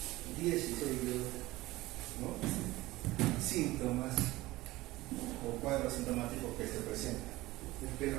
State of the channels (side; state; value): left; quieter; 18.6 dB